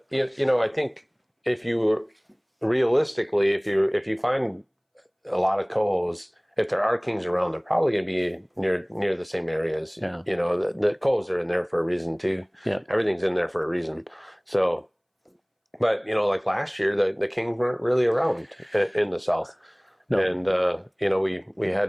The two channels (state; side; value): identical; both; correlation 1.00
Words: think realistically, if you find a lot of cohos, if there are kings around, they're probably going to be near the same areas. Yeah. The cohos are in there for a reason too. Yeah. Everything's in there for a reason. So, but like last year, the kings weren't really around in the south. No. And we